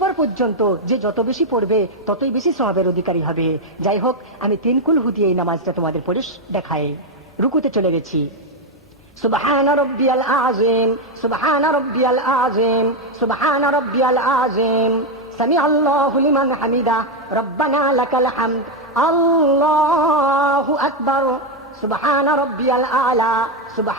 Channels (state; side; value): normal; both; correlation 0.04